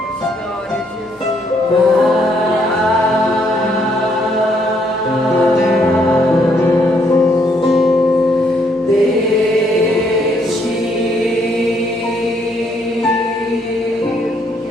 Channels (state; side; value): normal; both; correlation 0.70